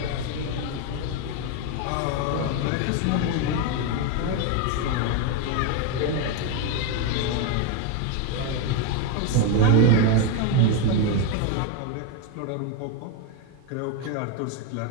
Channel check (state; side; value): different; both; correlation 0.02